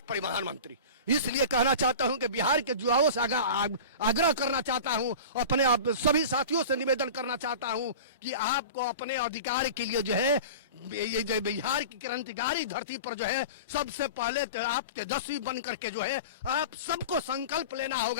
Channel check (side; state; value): both; inverted; correlation -0.33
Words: परिवहन मंत्री। इसलिए कहना चाहता हूं कि बिहार के युवाओं से आग्रह करना चाहता हूं, अपने सभी साथियों से निवेदन करना चाहता हूं कि आपको अपने अधिकार के लिए जो है ये जो बिहार की क्रांतिकारी धरती पर जो है सबसे पहले तो आप तेजस्वी बन करके जो है आप सबको संकल्प लेना